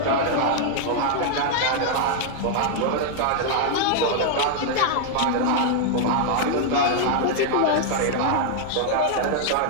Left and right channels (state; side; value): different; both; correlation 0.00